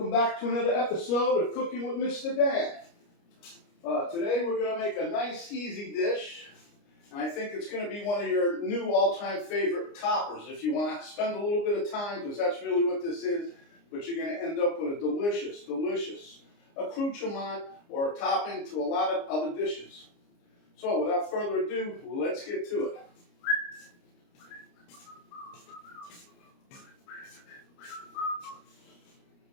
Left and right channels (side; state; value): right; late; 29 ms